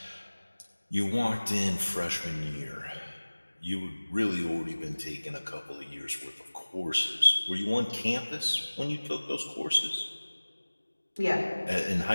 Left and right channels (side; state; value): both; inverted; correlation -1.00